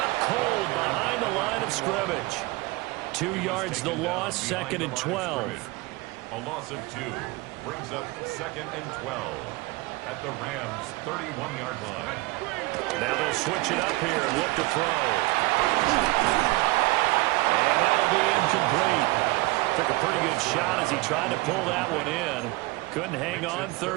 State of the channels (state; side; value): quieter; left; 22.2 dB